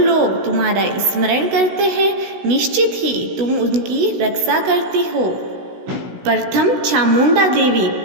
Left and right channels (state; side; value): late; left; 16 ms